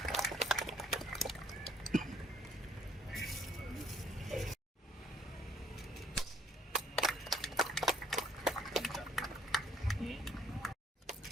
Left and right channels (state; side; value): normal; both; correlation 0.62